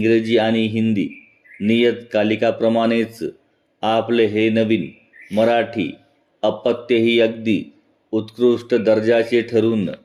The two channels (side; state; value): both; identical; correlation 1.00